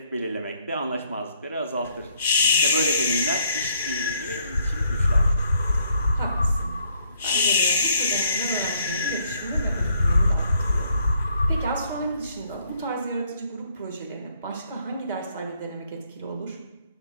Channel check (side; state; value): both; inverted; correlation -0.68